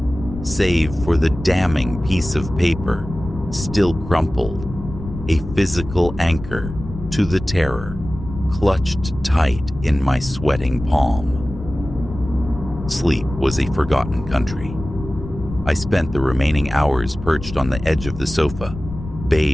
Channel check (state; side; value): noise; left; rumble, 11 dB below the sound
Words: save for the damning piece of paper, still crumpled, a physical anchor to the terror, clutched tight in my sweating palm. Sleep was a forgotten country. I spent the remaining hours perched on the edge of the sofa,